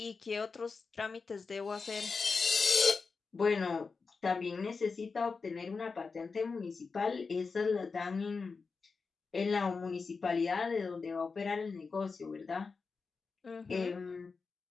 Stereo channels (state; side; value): quieter; right; 4.7 dB